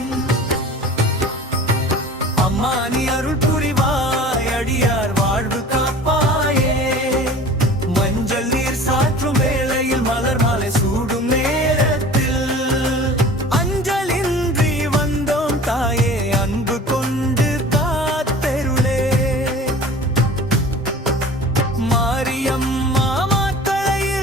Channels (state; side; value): normal; both; correlation 0.42